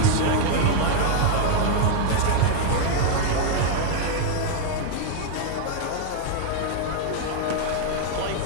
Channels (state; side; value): different; both; correlation 0.00